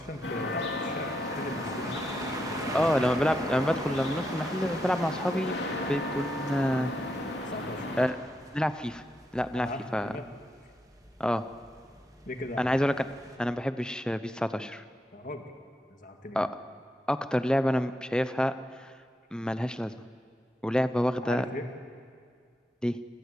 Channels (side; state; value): both; normal; correlation 0.83